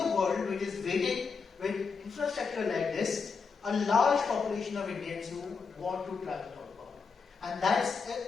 world which is waiting with infrastructure like this, a large population of Indians who want to travel outbound. And that's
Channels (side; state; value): right; quieter; 5.2 dB